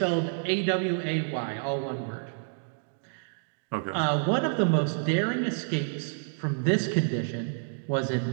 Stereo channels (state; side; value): silent; left; digital silence